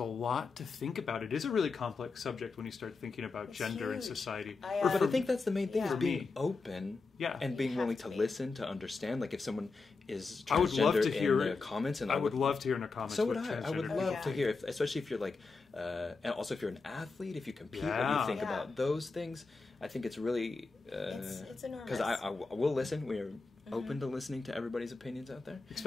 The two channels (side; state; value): right; quieter; 4.1 dB